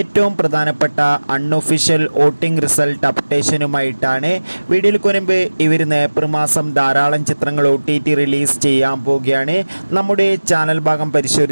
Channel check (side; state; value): both; inverted; correlation -1.00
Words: പ്രധാനപ്പെട്ട അൺഒഫീഷ്യൽ വോട്ടിംഗ് റിസൾട്ട് അപ്ഡേഷനുമായിട്ടാണ്. വീഡിയോയ്ക്ക് മുൻപ് ഇവർ ഏപ്രിൽ മാസം ധാരാളം ചിത്രങ്ങൾ OTT റിലീസ് ചെയ്യാൻ പോവുകയാണ്. നമ്മുടെ ചാനൽ ഭാഗം